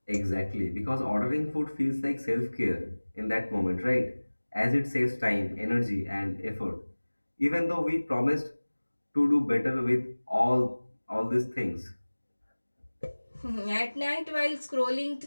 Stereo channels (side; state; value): both; inverted; correlation -1.00